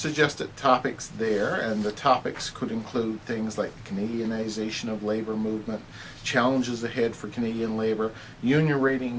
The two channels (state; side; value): identical; both; correlation 1.00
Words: topics there, and the topics could include things like Canadianization of labor movement, challenges ahead for Canadian labor, union rating